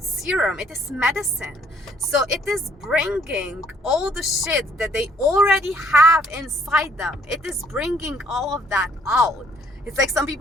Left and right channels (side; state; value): both; normal; correlation 0.63